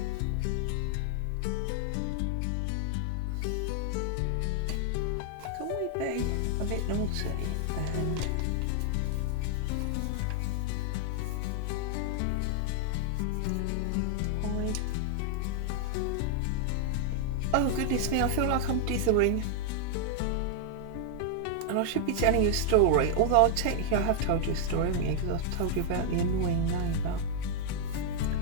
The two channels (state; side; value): different; both; correlation 0.00